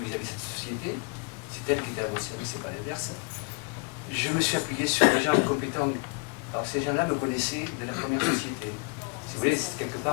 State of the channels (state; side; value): quieter; right; 33.3 dB